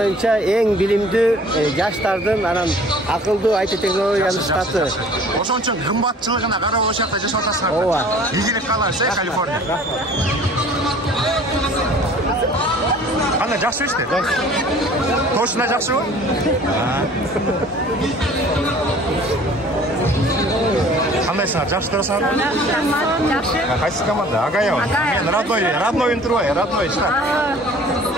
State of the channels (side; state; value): both; normal; correlation 0.50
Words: эң билимдүү жаштардын анан акылдуу IT технологиянын штаты. Ошон үчүн кымбатчылыгына карап ошол жакта жашап атасыңар. Ооба. Ийгилик каалайбыз, Калифорния. Кандай, жакшы иште? Точно жакшыбы? Кандайсыңар, жакшы турасыңарбы? Жакшы. Кайсы команда? Агаева. Мен родной интервью, родной штат.